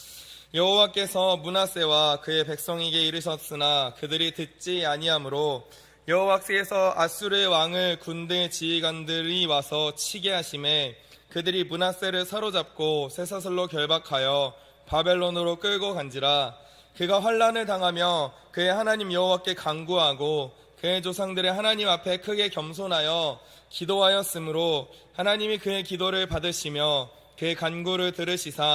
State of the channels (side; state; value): both; identical; correlation 1.00